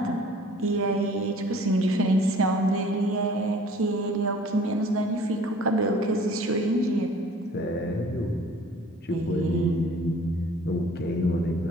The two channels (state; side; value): normal; both; correlation 0.51